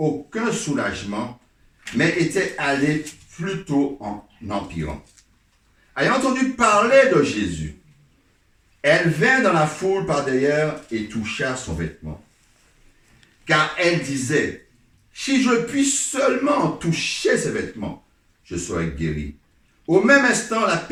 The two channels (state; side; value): identical; both; correlation 1.00